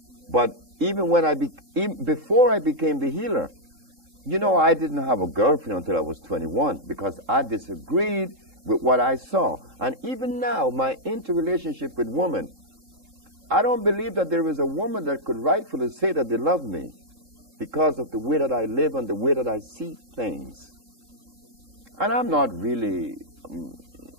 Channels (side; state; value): left; late; 3.7 ms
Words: But even before I became the healer, you know, I didn't have a girlfriend until I was 21 because I disagreed with what I saw. And even now, my interrelationship with women, I don't believe that there is a woman that could rightfully say that they love me because of the way that I live and the way that I see things. And I'm not really